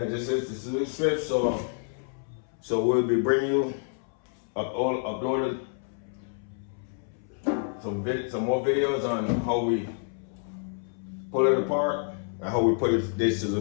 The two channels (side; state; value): right; silent; 59 dB below the other